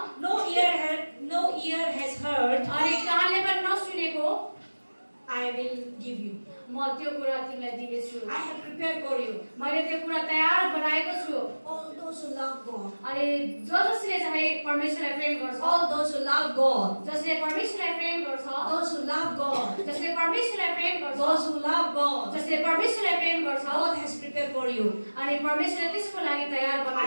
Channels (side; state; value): both; inverted; correlation -1.00